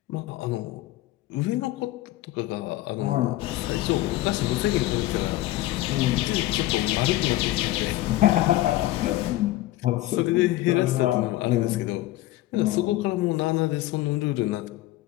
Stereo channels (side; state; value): right; quieter; 16.5 dB